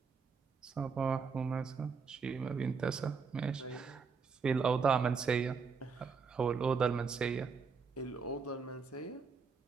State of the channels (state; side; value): quieter; left; 5.4 dB